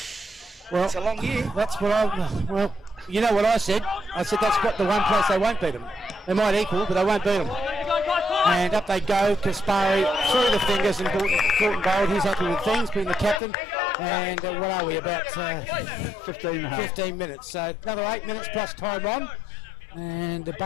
well, it's a long year. That's what you know what I said? I said that's got the one place they won't beat them. They might equal, but they won't beat them. And up they go. Kaspari through the fingers and Courtney Gold. He's happy with things, being the captain. And what are we, about 15 minutes. So another 8 minutes plus time on. And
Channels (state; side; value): drops out; right; at 13.4 s